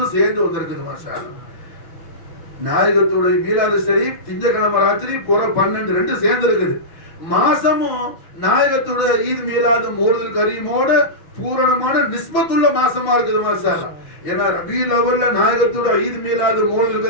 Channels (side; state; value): right; late; 6.3 ms